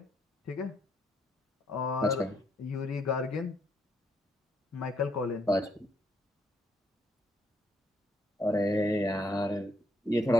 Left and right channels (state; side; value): normal; both; correlation 0.73